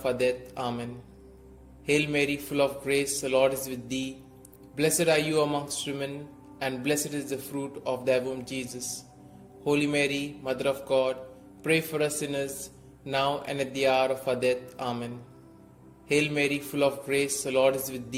our death. Amen. Hail Mary, full of grace, the Lord is with thee. Blessed are you amongst women, and blessed is the fruit of thy womb, Jesus. Holy Mary, Mother of God, pray for us sinners, now and at the hour of our death. Amen. Hail Mary, full of grace, the Lord is with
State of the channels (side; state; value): both; identical; correlation 1.00